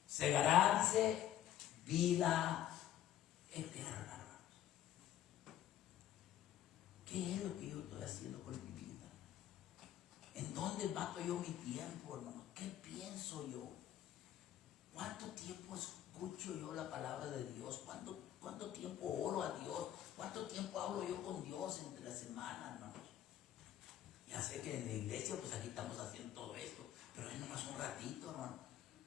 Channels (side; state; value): right; quieter; 11.9 dB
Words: Segará, dice, vida eterna, hermanos. ¿Qué es lo que yo estoy haciendo con mi vida? ¿En dónde mato yo mi tiempo, hermano? ¿Qué pienso yo? ¿Cuánto tiempo escucho yo la palabra de Dios? ¿Cuánto tiempo oro a Dios? ¿Cuánto tiempo hablo yo con Dios entre la semana, hermanos? Ya sé que en la iglesia, pues aquí estamos haciendo todo esto, pero es nomás un ratito, hermano.